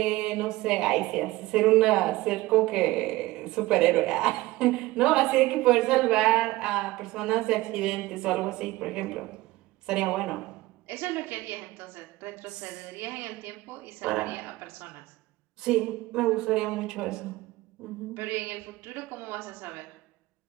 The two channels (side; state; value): left; quieter; 18.9 dB